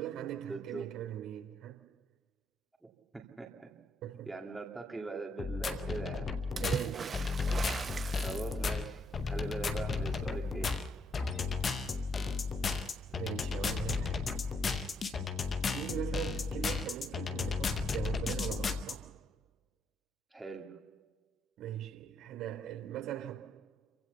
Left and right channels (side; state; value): both; normal; correlation 0.74